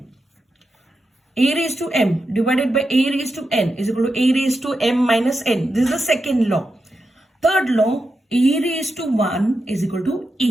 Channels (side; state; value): both; normal; correlation 0.88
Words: A raised to m divided by a raised to n is equal to a raised to m minus n. This is the second law. Third law, a raised to 1 is equal to